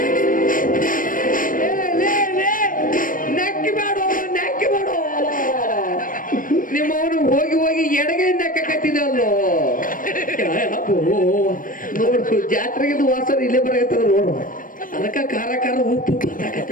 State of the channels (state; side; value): late; right; 0.40 ms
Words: ನಕ್ಕಿ ಮಾಡು, ನಕ್ಕಿ ಮಾಡು. ನಿಮ್ಮವನು ಹೋಗಿ ಹೋಗಿ ಎಡಗೈಯಿಂದ ಕಟ್ಟಿದಲ್ಲೋ. ನೋಡು, ಜಾತ್ರೆಗಿದ್ದು ವಾಸನ ಇಲ್ಲೇ ಬರಕತ್ತದ ನೋಡು. ಅದಕ್ಕ ಖಾರ ಖಾರ ಉಪ್ಪು